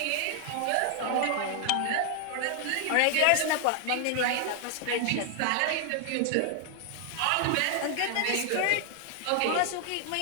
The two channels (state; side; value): different; both; correlation 0.00